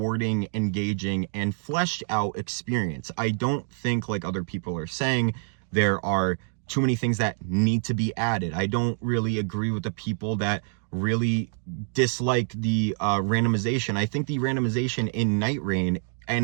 engaging, and fleshed out experience. I don't think, like other people are saying, there are too many things that need to be added. I don't really agree with the people that really dislike the randomization. I think the randomization in Nightreign and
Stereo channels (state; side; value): silent; left; 61 dB below the other